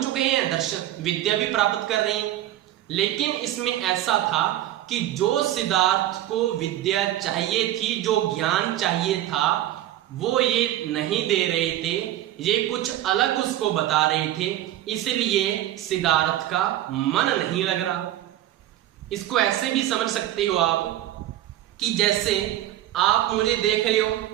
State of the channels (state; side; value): quieter; left; 13.4 dB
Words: चुके हैं, दर्शन विद्या भी प्राप्त कर रहे हैं। लेकिन इसमें ऐसा था कि जो सिद्धार्थ को विद्या चाहिए थी, जो ज्ञान चाहिए था, वो ये नहीं दे रहे थे, ये कुछ अलग उसको बता रहे थे, इसलिए सिद्धार्थ का मन नहीं लग रहा। इसको ऐसे भी समझ सकते हो आप कि जैसे आप मुझे देख रहे हो,